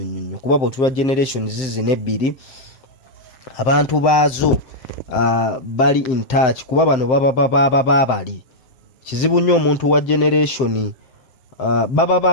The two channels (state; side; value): late; right; 7.7 ms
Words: kuba bw'otulwa generation zinebbiri abantu baazo bali in touch kuba bano baba bali kizibu nnyo omuntu wa generation